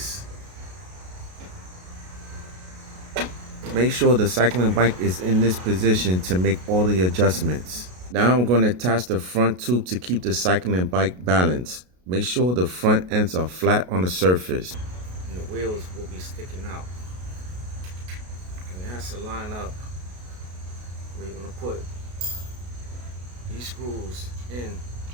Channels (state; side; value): late; left; 33 ms